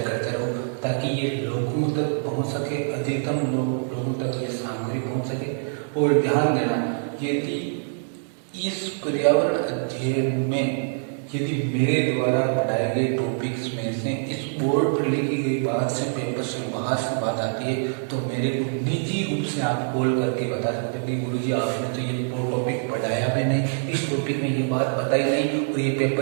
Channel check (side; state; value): left; silent; digital silence